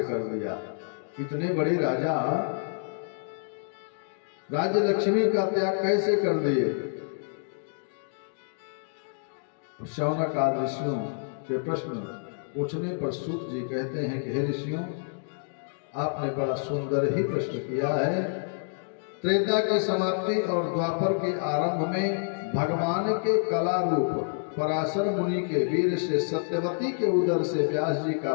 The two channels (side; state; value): right; silent; digital silence